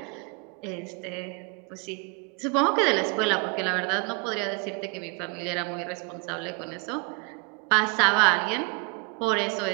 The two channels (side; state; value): left; quieter; 32.4 dB